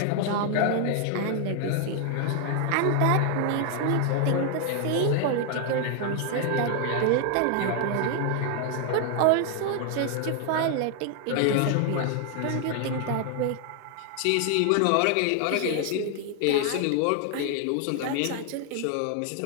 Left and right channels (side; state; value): both; different; correlation 0.00